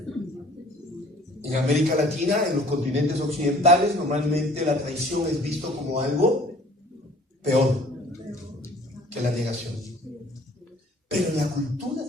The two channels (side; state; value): both; normal; correlation 0.52